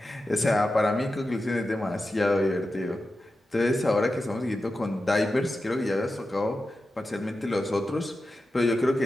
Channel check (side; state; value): both; normal; correlation 0.92